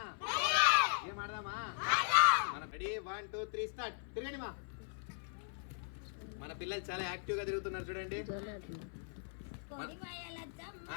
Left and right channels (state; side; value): silent; right; 52 dB below the other